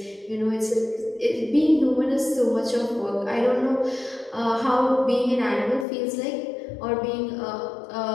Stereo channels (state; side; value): drops out; right; at 5.9 s